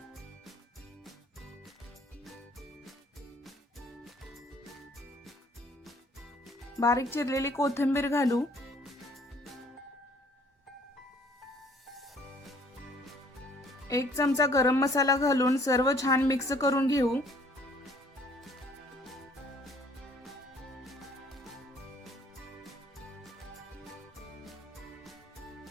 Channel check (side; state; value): both; normal; correlation 0.58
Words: बारीक चिरलेली कोथिंबीर घालू। एक चमचा गरम मसाला घालून सर्व छान मिक्स करून घेऊ।